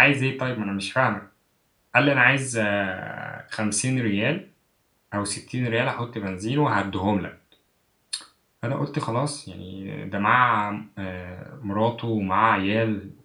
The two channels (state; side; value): identical; both; correlation 1.00